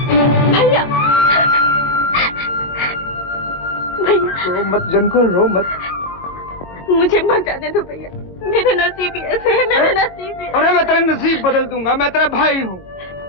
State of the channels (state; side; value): late; right; 22 ms